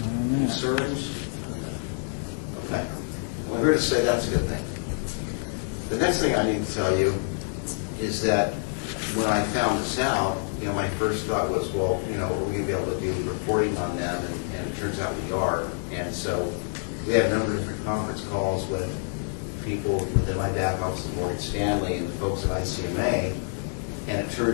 Concerns? Okay. Well, I'm here to say that's a good thing. The next thing I need to tell you is that when I found this out, my first thought was, well, are we going to be able to do reporting on them? And it turns out we are. And so we had a number of different conference calls with people within my back office at Morgan Stanley and the folks at ICMA. And it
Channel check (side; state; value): right; silent; 60 dB below the other